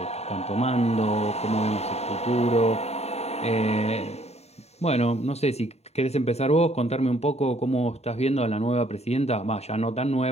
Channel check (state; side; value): late; right; 0.31 ms